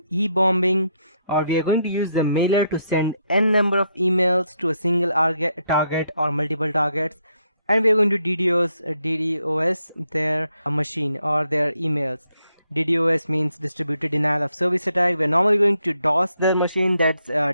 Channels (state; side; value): inverted; both; correlation -0.77